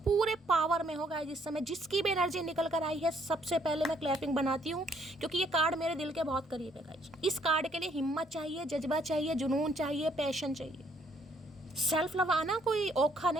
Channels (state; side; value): normal; both; correlation 0.67